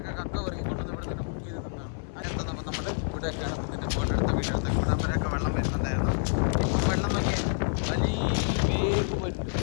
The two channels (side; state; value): right; silent; 59 dB below the other